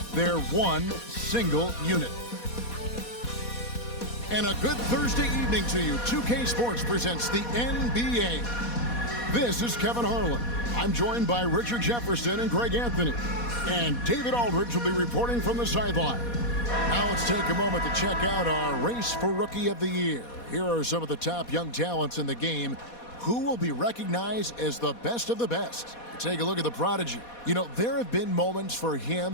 they're one single unit. And a good Thursday evening to you. 2K Sports presents the NBA. This is Kevin Harlan. I'm joined by Richard Jefferson and Greg Anthony. And David Aldridge will be reporting from the sideline. Now let's take a moment to check out our race for Rookie of the Year. Here are some of the top young talents in the game who will be recognized as the best of the best. Take a look at the prodigy. You know, there have been moments for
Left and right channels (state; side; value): late; right; 4.2 ms